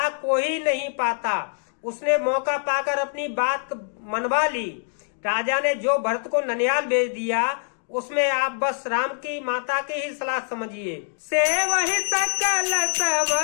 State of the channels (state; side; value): silent; right; digital silence